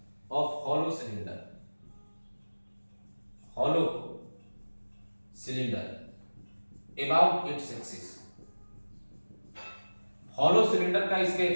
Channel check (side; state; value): both; inverted; correlation -1.00